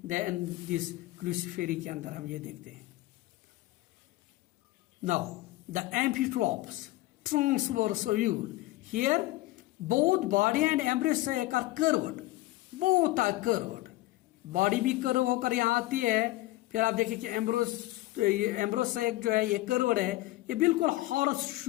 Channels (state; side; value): quieter; right; 18.6 dB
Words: Then this Cruciferae के अंदर हम ये देखते हैं. Now the amphitropous, transverse ovule. Here both body and embryo sac are curved. Both are curved. Body भी कर्व होकर यहाँ आती है. फिर आप देखिए कि एम्ब्रोसेक जो है ये कर्व्ड है. ये बिल्कुल हॉर्स